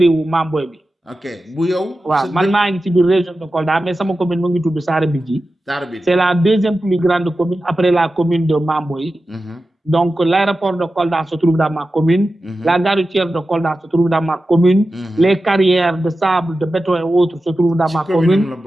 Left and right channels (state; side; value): normal; both; correlation 0.93